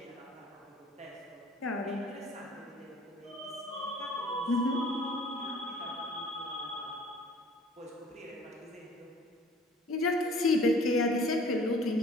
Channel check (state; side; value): normal; both; correlation 0.51